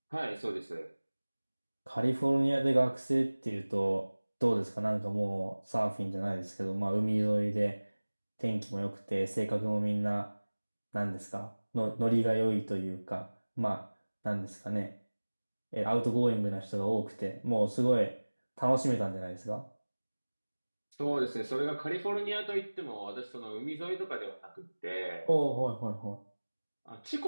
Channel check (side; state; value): both; inverted; correlation -1.00